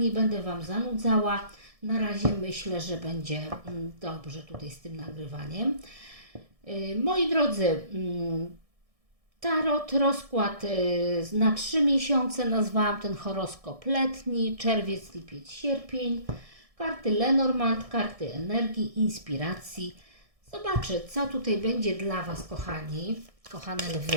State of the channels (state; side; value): late; left; 1.6 ms